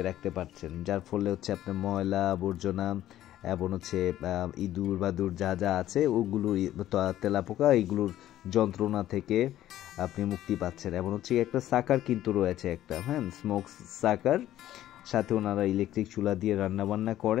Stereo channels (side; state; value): right; quieter; 13.1 dB